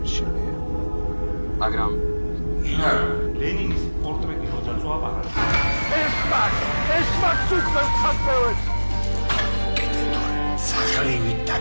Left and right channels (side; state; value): both; inverted; correlation -1.00